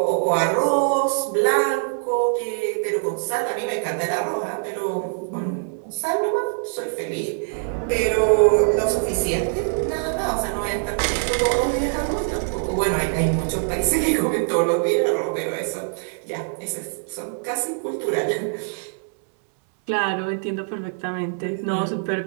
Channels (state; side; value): silent; left; 63 dB below the other